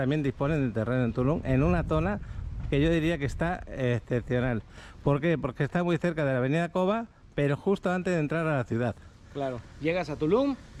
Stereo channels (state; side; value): identical; both; correlation 1.00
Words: disponen de terreno en Tulum, en una zona que yo diría que está excepcional. ¿Por qué? Porque está muy cerca de la avenida Cova, pero justo antes de entrar a la ciudad. Claro, llegas a Tulum,